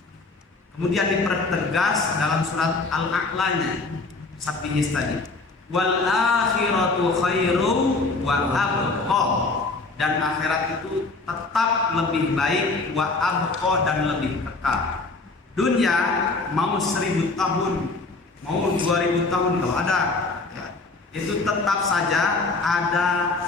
Kemudian dipertegas dalam surat Al-A'lanya, Sabbihis tadi, wal akhiratu khairu wa abqa, dan akhirat itu tetap lebih baik, wa abqa, dan lebih kekal. Dunia mau 1000 tahun, mau 2000 tahun kalau ada, ya, itu tetap saja ada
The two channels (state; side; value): quieter; right; 3.6 dB